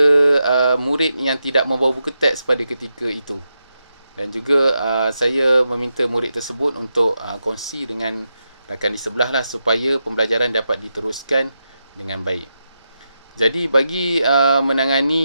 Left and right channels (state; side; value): inverted; both; correlation -0.87